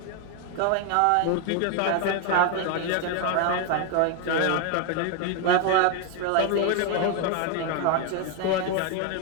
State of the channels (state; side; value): different; both; correlation 0.01